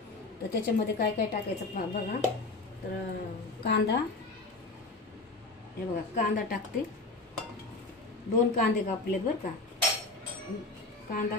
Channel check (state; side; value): quieter; right; 3.3 dB